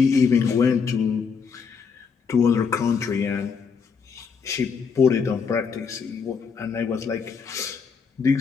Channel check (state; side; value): quieter; right; 5.8 dB